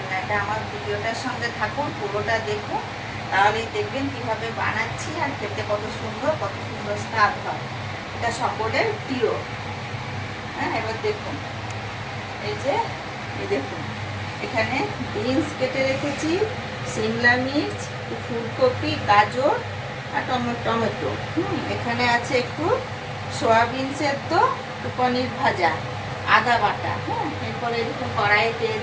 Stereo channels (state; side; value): identical; both; correlation 1.00